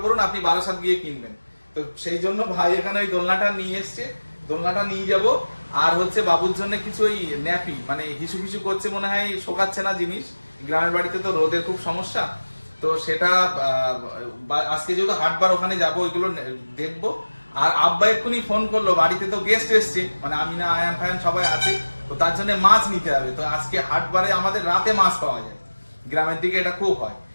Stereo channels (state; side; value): inverted; both; correlation -1.00